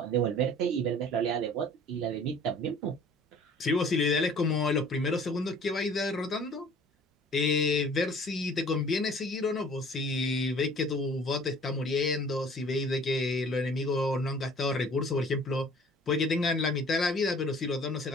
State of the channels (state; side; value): normal; both; correlation 0.51